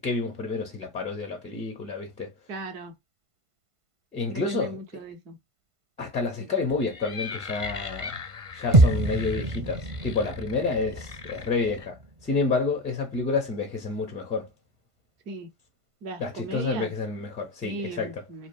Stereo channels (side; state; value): left; late; 1.5 ms